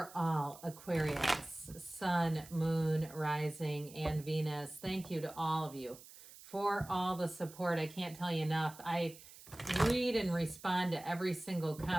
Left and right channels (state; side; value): noise; right; hiss, 18 dB below the sound